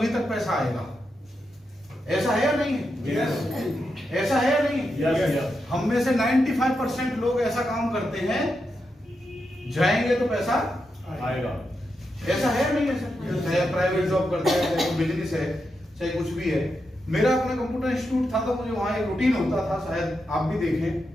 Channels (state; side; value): normal; both; correlation 0.86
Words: तक पैसा आएगा, ऐसा है या नहीं है? यस। ऐसा है या नहीं है? यस। हम में से 95% लोग ऐसा काम करते हैं, जाएंगे तो पैसा आएगा। ऐसा है या नहीं है सर? चाहे प्राइवेट जॉब करते हैं, चाहे बिजनेस है, चाहे कुछ भी है। मेरा अपना कंप्यूटर इंस्टीट्यूट था तो मुझे वहां एक रूटीन होता था, शायद आप भी देखें।